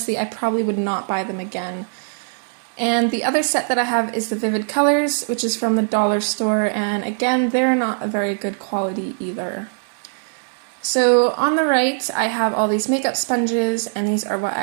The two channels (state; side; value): silent; left; 61 dB below the other